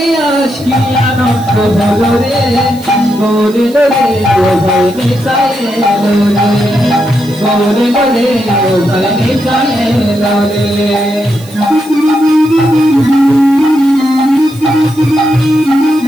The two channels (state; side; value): noise; right; hiss, 21 dB below the sound